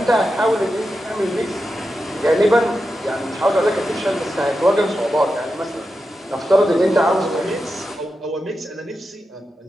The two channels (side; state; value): both; normal; correlation 0.89